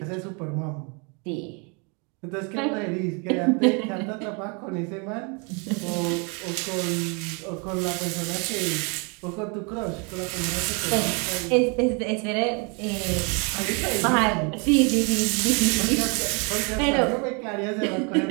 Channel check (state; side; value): quieter; left; 33.4 dB